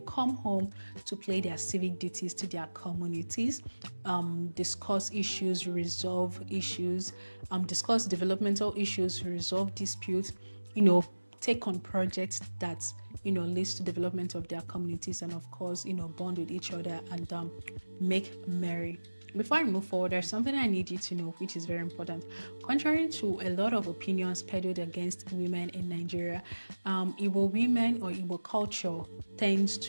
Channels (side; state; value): both; inverted; correlation -1.00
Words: come home to play their civic duties to their communities, discuss issues, resolve issues, discuss developmental issues, resolve disputes, take on projects that leads to development of their communities, and of course bond with each other and make merry. Before I move forward, there's something I need you to know, which is very important. Contrary to a lot of opinions peddled against women in Nigeria, Igbo women or Igbo culture tends